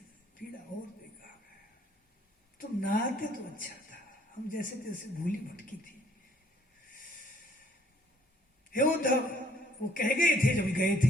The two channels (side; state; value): both; normal; correlation 0.62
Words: पीड़ा और देगा। तुम ना आते तो अच्छा था, हम जैसे जैसे भूली भटकी थी हे उद्धव, वो कह गए थे जब गए